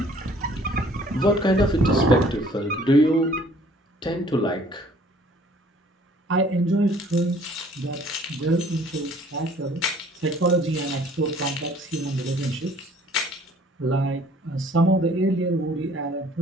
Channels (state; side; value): normal; both; correlation 0.56